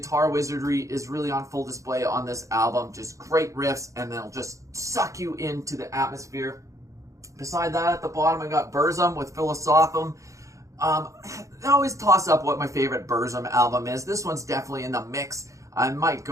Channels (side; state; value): left; late; 0.15 ms